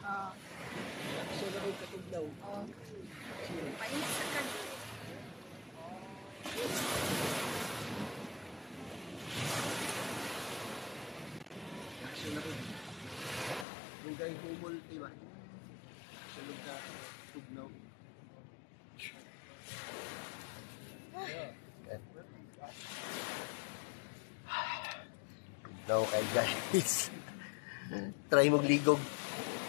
Ah. Action na rin katugnaw. Oh. Painis sa kan. Action na rin. Lugay humol, diba? Action ka tugnaw. Tugnaw kay guys. Try mong ligog.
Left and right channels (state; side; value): drops out; right; at 13.7 s